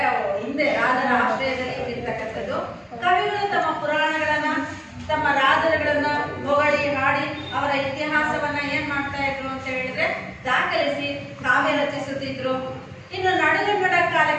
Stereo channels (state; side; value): identical; both; correlation 1.00